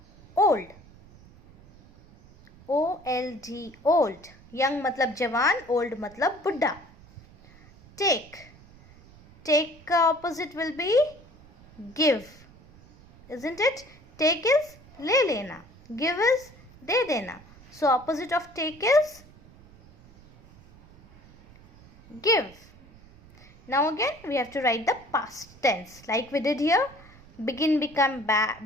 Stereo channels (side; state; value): right; noise; rumble, 24 dB below the sound